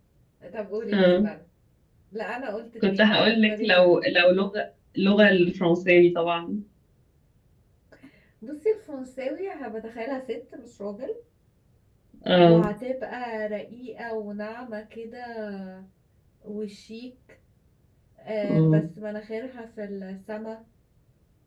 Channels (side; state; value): both; identical; correlation 1.00